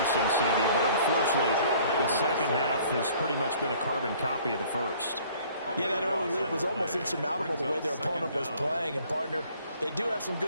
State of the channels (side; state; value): both; inverted; correlation -0.54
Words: CD. But unfortunately, the second half has pretty much been a carbon copy of the first. Yeah, that early lead was almost insurmountable the way their opponent was playing. And, partner, they do have some